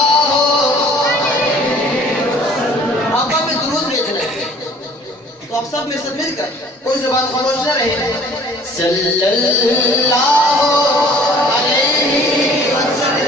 आका पे दुरूद भेजना है, तो आप सब में साथ मिलकर कोई ज़ुबान खामोश न रहे। सल्लल्लाहु अलैहि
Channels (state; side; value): normal; both; correlation 0.52